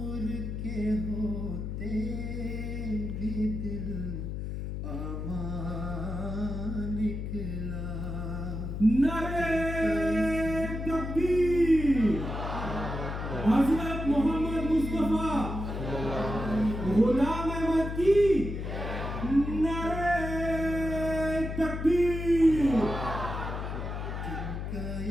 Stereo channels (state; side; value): noise; left; hum, 5 dB below the sound